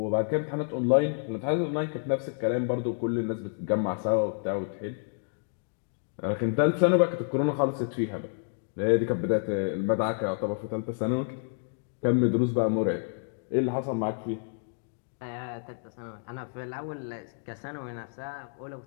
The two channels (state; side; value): silent; right; digital silence